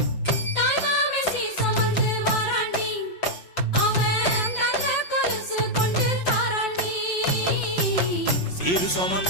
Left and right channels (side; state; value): right; late; 5.6 ms